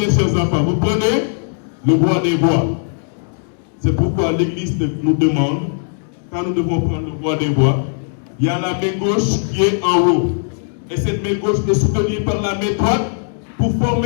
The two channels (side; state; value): right; silent; digital silence